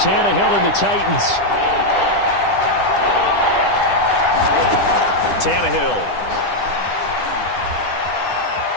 Tannehill and the Titans. Tannehill.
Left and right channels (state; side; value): late; right; 10 ms